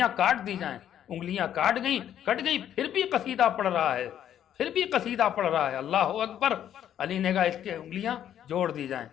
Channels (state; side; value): quieter; right; 10.4 dB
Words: کاٹ دی جائیں۔ انگلیاں کٹ گئی، پھر بھی قصیدہ پڑھ رہا ہے، پھر بھی قصیدہ پڑھ رہا ہے، اللہ اکبر۔ علی نے کہا اس کے انگلیاں جوڑ دی جائیں،